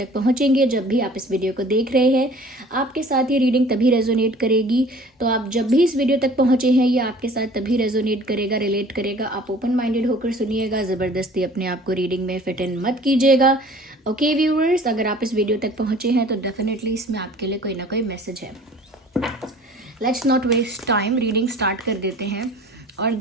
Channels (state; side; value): normal; both; correlation 0.48